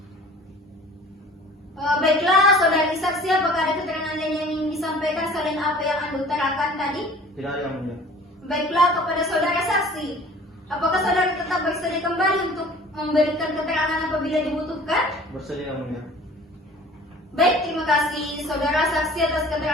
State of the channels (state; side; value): normal; both; correlation 0.47